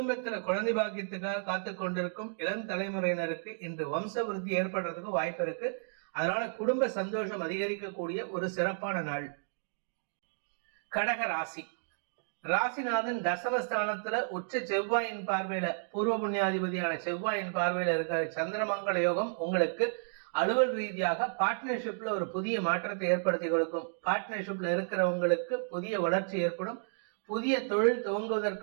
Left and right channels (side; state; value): left; silent; digital silence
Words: குழந்தை பாக்கியத்துக்காக காத்து கொண்டிருக்கும் இளம் தலைமுறையினருக்கு இன்று வம்ச விருத்தி ஏற்படுறதுக்கு வாய்ப்பு இருக்கு. அதனால குடும்ப சந்தோஷம் அதிகரிக்கக்கூடிய ஒரு சிறப்பான நாள். கடக ராசி. ராசிநாதன் தசமஸ்தானத்துல உச்ச செவ்வாயின் பார்வையில, பூர்வ புண்ணியாதிபதியான செவ்வாயின் பார்வையில இருக்கிற சந்திரமங்கல யோகம் உங்களுக்கு அலுவல் ரீதியாக பார்ட்னர்ஷிப்ல ஒரு புதிய மாற்றத்தை ஏற்படுத்தி கொடுக்கும். பார்ட்னர்ஷிப்ல இருக்கிறவங்களுக்கு புதிய வளர்ச்சி ஏற்படும். புதிய தொழில்